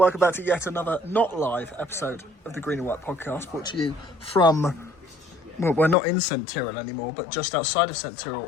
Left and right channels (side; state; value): right; drops out; at 6.0 s